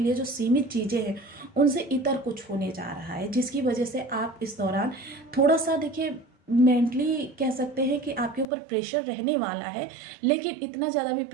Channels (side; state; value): left; drops out; at 8.5 s